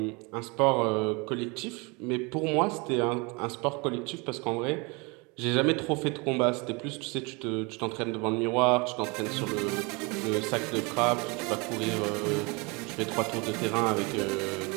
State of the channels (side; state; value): left; quieter; 28.6 dB